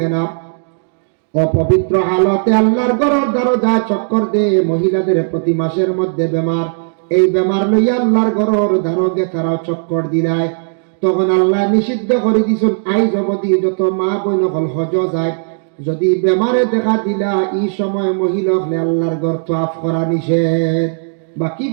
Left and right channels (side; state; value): left; silent; digital silence